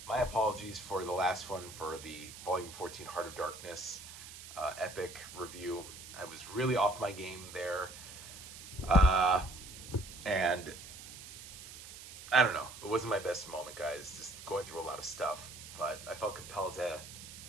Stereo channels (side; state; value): right; noise; hiss, 14 dB below the sound